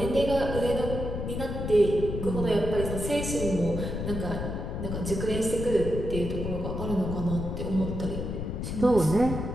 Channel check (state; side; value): noise; left; rumble, 4 dB below the sound